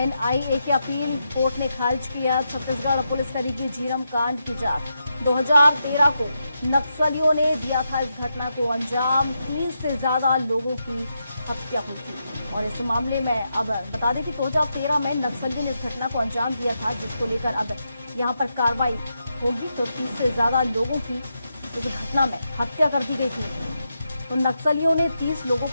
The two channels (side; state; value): both; inverted; correlation -0.85